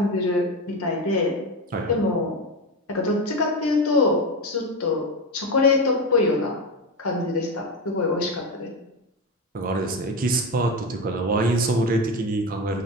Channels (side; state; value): both; normal; correlation 0.18